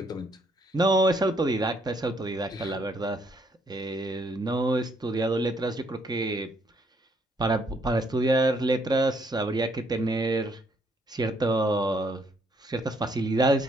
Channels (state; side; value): normal; both; correlation 0.70